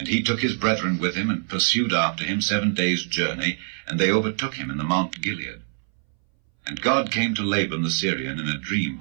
he took his brethren with him, and pursued after him 7 days' journey, and they overtook him in the Mount Gilead. And God came to Laban the Syrian in a dream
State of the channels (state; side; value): silent; left; 61 dB below the other